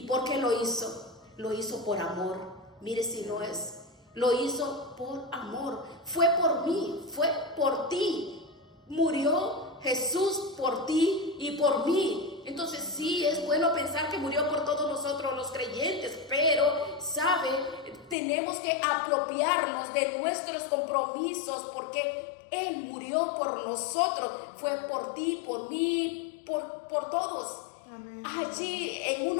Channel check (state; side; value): drops out; right; at 18.2 s